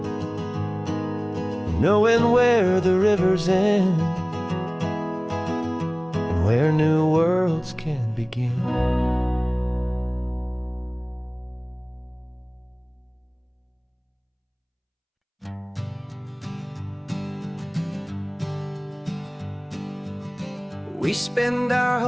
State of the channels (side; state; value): both; identical; correlation 1.00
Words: knowing where the rivers end and where new worlds can begin. We spend our